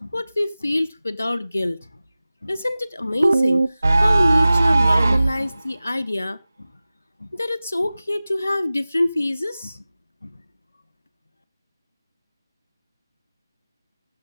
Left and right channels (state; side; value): inverted; both; correlation -0.96